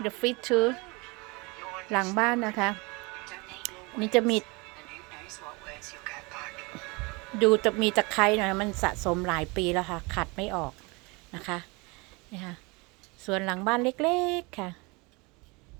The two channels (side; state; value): left; quieter; 27.0 dB